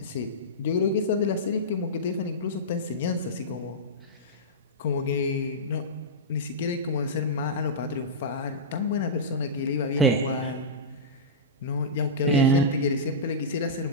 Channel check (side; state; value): both; normal; correlation -0.16